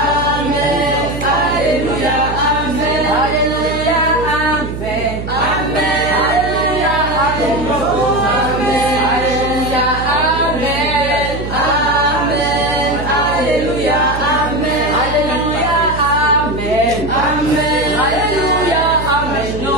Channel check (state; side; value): noise; right; hum, 7 dB below the sound